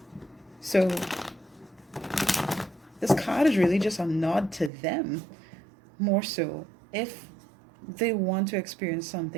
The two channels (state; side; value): drops out; left; at 4.7 s